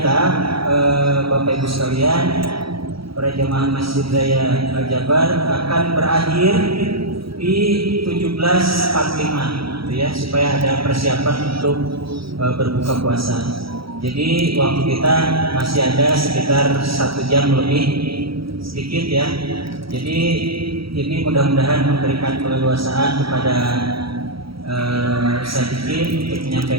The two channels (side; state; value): left; late; 0.75 ms